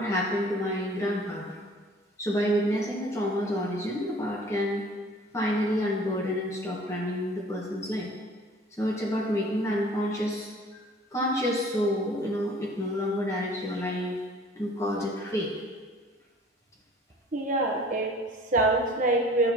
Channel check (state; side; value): normal; both; correlation 0.50